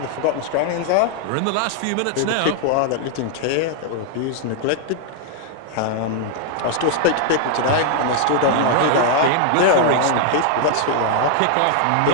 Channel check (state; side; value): different; both; correlation 0.00